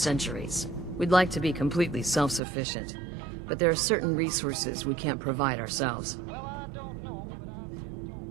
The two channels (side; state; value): left; drops out; at 2.4 s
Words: We'd like to be completely self-sufficient, but there are certain resources we can't provide ourselves.